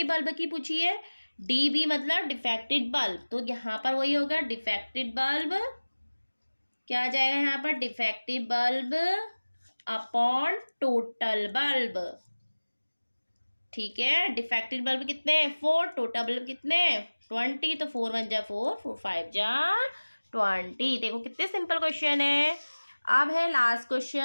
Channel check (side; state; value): both; inverted; correlation -1.00